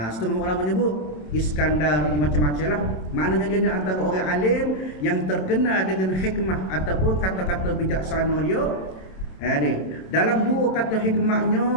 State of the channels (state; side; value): late; right; 27 ms